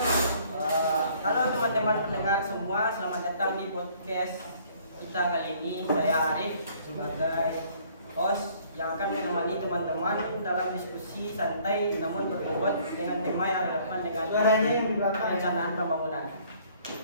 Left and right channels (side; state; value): both; inverted; correlation -0.59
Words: Halo teman-teman pendengar semua, selamat datang di podcast kita kali ini. Saya Arif sebagai host yang akan menemani teman-teman dalam diskusi santai namun berbobot dengan tema yang relevan dengan perencanaan pembangunan.